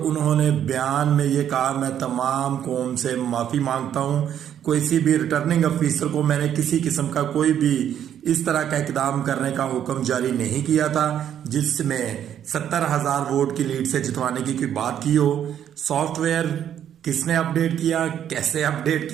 बयान में ये कहा मैं तमाम कौम से माफ़ी मांगता हूँ। किसी भी रिटर्निंग अफिसर को मैंने किसी किस्म का कोई भी इस तरह का इकदाम करने का हुक्म जारी नहीं किया था जिसमें 70,000 वोट की लीड से जितवाने की कोई बात की हो। सॉफ्टवेयर किसने अपडेट किया, कैसे अपडेट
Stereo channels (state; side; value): quieter; left; 9.8 dB